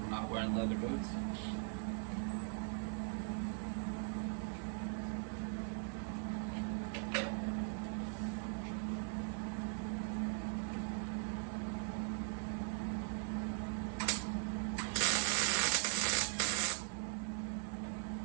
from not wearing leather boots.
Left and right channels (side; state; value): left; silent; 51 dB below the other